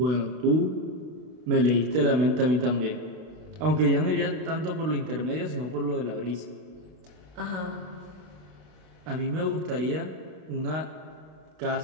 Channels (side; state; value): left; late; 32 ms